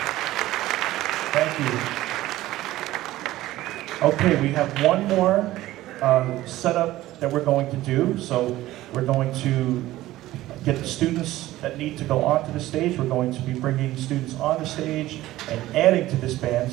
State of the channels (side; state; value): left; quieter; 15.9 dB